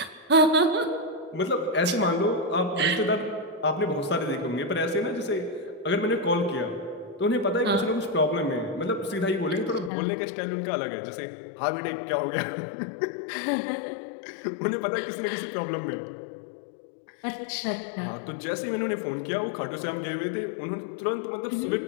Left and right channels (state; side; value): drops out; right; at 9.9 s